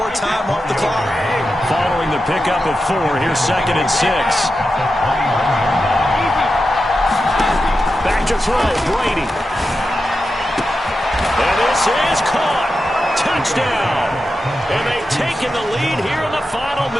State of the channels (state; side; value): normal; both; correlation 0.90